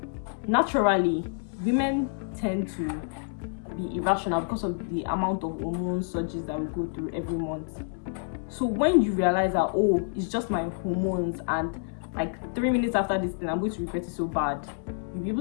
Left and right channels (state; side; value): silent; right; digital silence